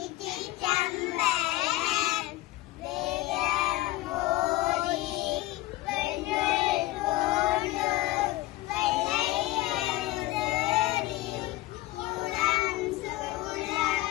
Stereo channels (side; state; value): right; quieter; 17.7 dB